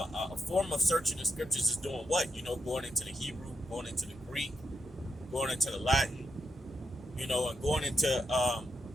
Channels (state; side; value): normal; both; correlation 0.84